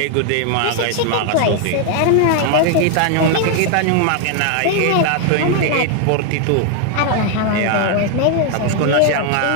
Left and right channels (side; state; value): both; different; correlation 0.00